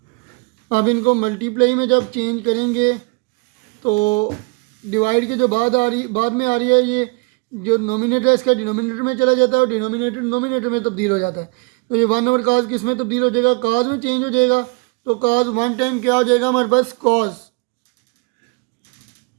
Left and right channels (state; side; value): quieter; left; 31.3 dB